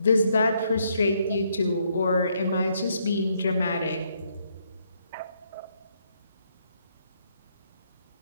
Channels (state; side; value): inverted; both; correlation -0.73